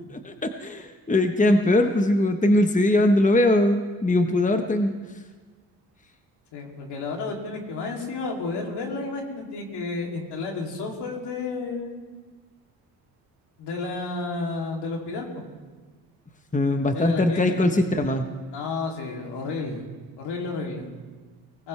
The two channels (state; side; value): normal; both; correlation 0.66